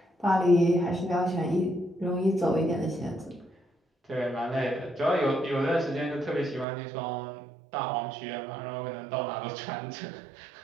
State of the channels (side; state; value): left; drops out; at 6.7 s